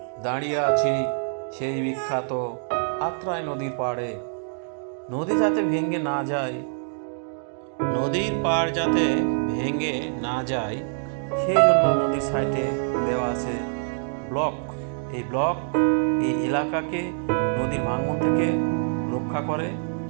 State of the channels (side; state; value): left; silent; digital silence